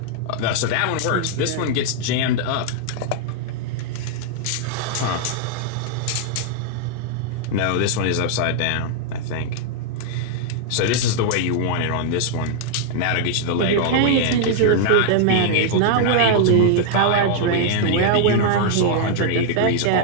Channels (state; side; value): different; both; correlation -0.01